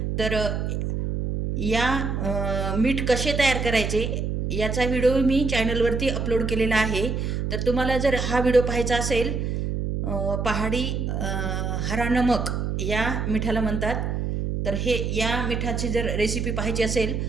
तर या मीठ कसे तयार करायचे याचा व्हिडिओ मी चॅनलवरती अपलोड केलेला आहे. तर तुम्हाला जर हा व्हिडिओ पाहायचा असेल, पहाडी हरा नमक या मिठाला म्हणतात, तर या मिठाची जर रेसिपी पाहायची असेल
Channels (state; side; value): noise; right; hum, 1 dB below the sound